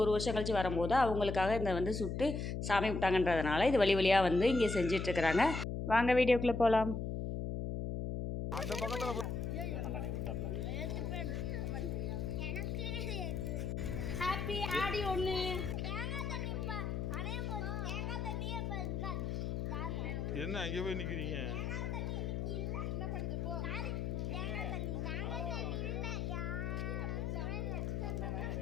1 வருஷம் கழிச்சு வரும்போது அவங்களுக்காக இந்த வந்து சுட்டு சாமி விட்டாங்கன்றதுனால இது வழி வழியாக வந்து இங்கே செஞ்சிட்ருக்குறாங்க. வாங்க வீடியோக்குள்ளே போகலாம். அந்த பக்கத்துல ஹாப்பி ஆடி 1. என்ன அங்கே போய் நிக்கிறீங்க?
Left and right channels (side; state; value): left; noise; hum, 2 dB below the sound